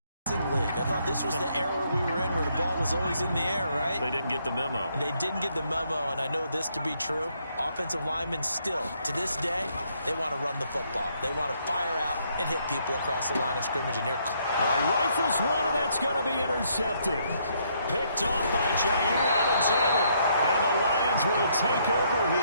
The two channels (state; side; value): inverted; both; correlation -0.71